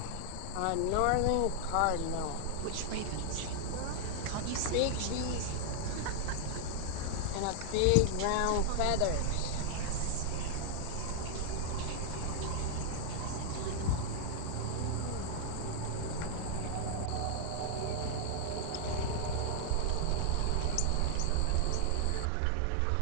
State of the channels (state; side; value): different; both; correlation 0.00